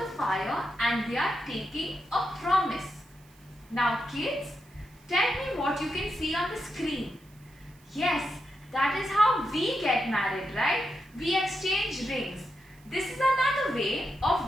fire and they are taking a promise. Now kids, tell me what you can see on the screen. Yes, that is how we get married, right? We exchange rings. This is another way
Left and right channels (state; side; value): noise; right; hiss, 29 dB below the sound